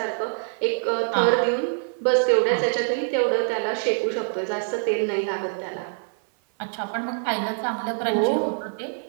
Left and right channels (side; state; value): left; silent; 56 dB below the other